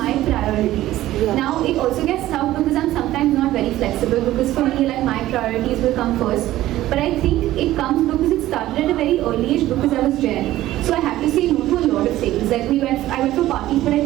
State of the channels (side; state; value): left; quieter; 14.9 dB